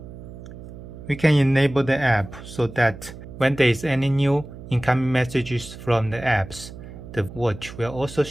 We can enable the app so that when there is any new incoming messages from the apps, the watch will also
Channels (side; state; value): right; noise; hum, 14 dB below the sound